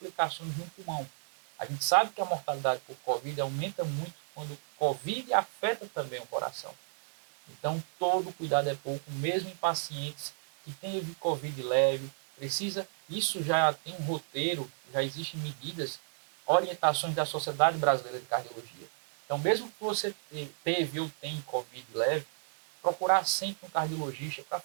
no pulmão. A gente sabe que a mortalidade por Covid aumenta muito quando o Covid afeta também o coração. Então, todo cuidado é pouco, mesmo em pacientes que têm Covid leve, isso já tem um roteiro, já existem medidas, orientações da Sociedade Brasileira de Cardiologia. Então, mesmo que você teve ou tem Covid leve, procurar sempre um cardiologista para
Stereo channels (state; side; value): silent; left; digital silence